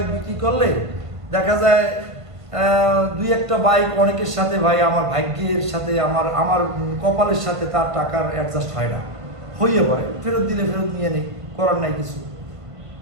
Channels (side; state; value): left; late; 1.5 ms